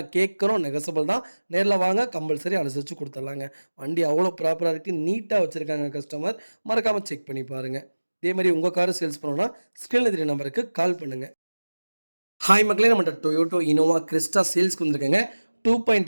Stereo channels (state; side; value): inverted; both; correlation -1.00